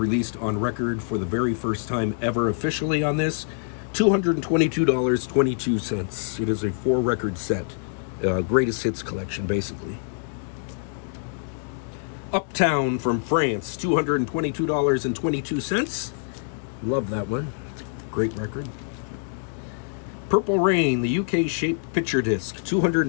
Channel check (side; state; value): right; silent; digital silence